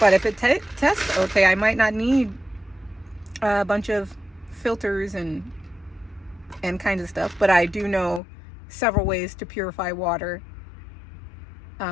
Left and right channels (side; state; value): right; drops out; at 8.2 s